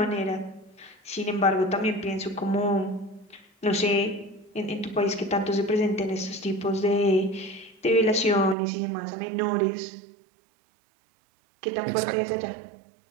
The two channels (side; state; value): left; drops out; at 8.6 s